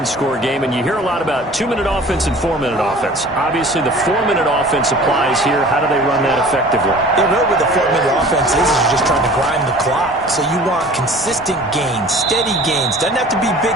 game. And you hear a lot about 2-minute offense and 4-minute offense. Obviously, the 4-minute offense applies here. How do they run that effectively? Yeah, really what the 4-minute offense is you're just trying to grind the clock. So you want consistent gains, steady gains. Doesn't have to be big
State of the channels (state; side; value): normal; both; correlation 0.45